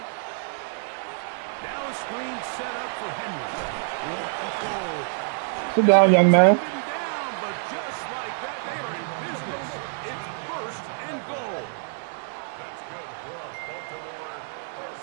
Now a screen set up for Henry. Whoa. Sit down, young man. Taken down, but just like that, they are in business. It's 1st and goal. That's good for a Baltimore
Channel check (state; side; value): silent; left; digital silence